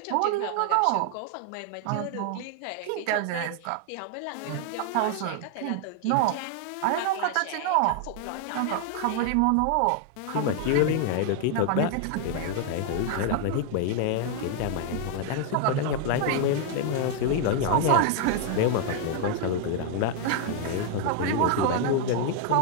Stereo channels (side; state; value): both; different; correlation 0.00